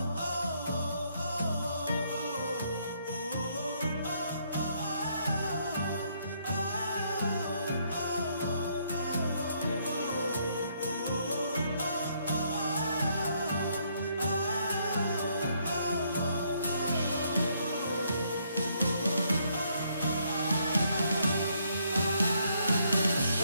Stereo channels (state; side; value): inverted; both; correlation -0.71